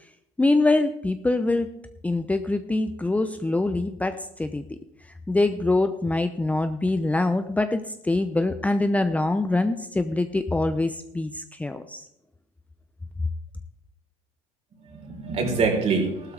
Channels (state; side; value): normal; both; correlation 0.87